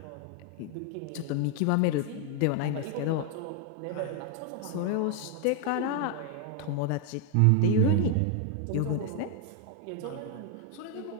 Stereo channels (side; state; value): both; different; correlation 0.01